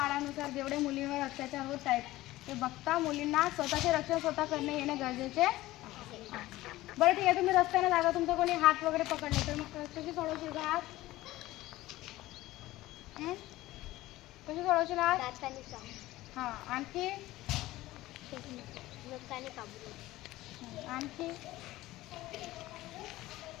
जेवढे मुलींवर अत्याचार होत आहेत ते बघता मुलींना स्वतःचे रक्षण स्वतः करणे येणे गरजेचे. बरं ठीक आहे, तुम्ही रस्त्याने जाता, तुमचा कोणी हात वगैरे पकडले तर मग कशी सोडवशील का हात? कशी सोडवशील हात? हां, आणखी आणखी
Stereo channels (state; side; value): quieter; right; 17.1 dB